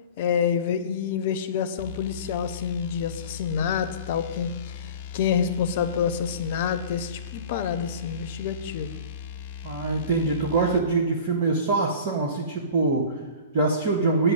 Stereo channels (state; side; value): inverted; both; correlation -0.40